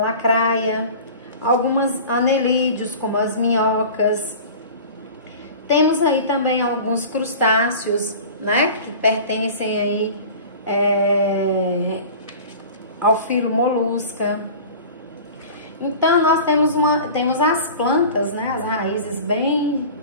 algumas anelídeos como as minhocas. Temos aí também alguns crustáceos, que pertencem aí ao filo molusca. Então, nós temos as plantas, as raízes bem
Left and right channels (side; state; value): both; inverted; correlation -0.39